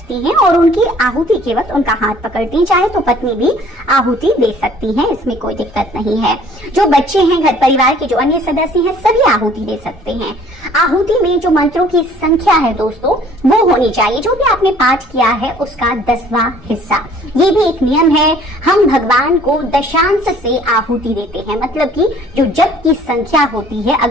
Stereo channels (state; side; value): normal; both; correlation 0.54